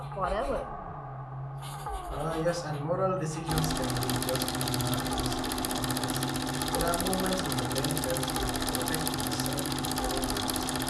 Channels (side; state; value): both; identical; correlation 1.00